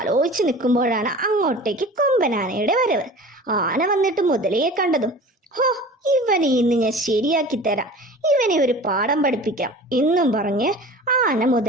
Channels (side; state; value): both; normal; correlation 0.39